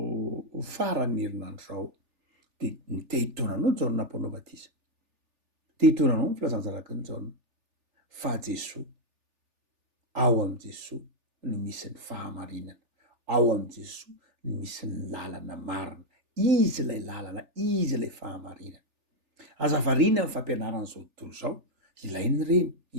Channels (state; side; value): late; left; 3.4 ms